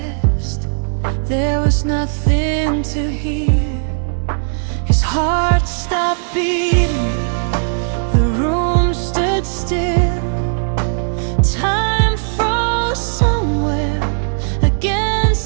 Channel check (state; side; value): silent; left; 68 dB below the other